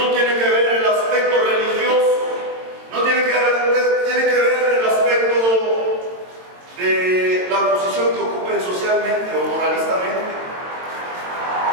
tiene que ver el aspecto religioso, no tiene que ver el aspecto de la posición que ocupen socialmente o moralistamente,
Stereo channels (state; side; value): late; left; 22 ms